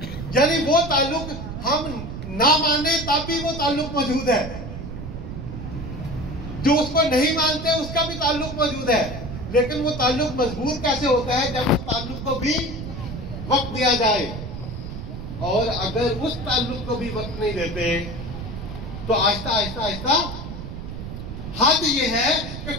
यानी वो ताल्लुक हम ना माने तब भी वो ताल्लुक मौजूद है, जो उसको नहीं मानते उसका भी ताल्लुक मौजूद है। लेकिन वो ताल्लुक मजबूत कैसे होता है? जब उस ताल्लुक को भी वक्त दिया जाए। और अगर उस ताल्लुक को भी वक्त नहीं देते तो आहिस्ता आहिस्ता आहिस्ता हद ये है कि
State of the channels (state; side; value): noise; right; rumble, 8 dB below the sound